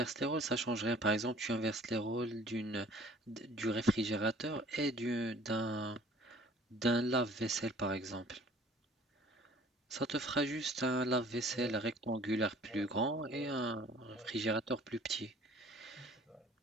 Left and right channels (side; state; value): both; normal; correlation 0.52